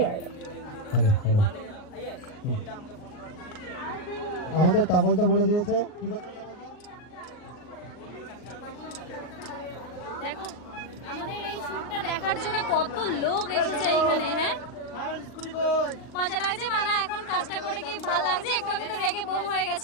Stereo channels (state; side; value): late; right; 39 ms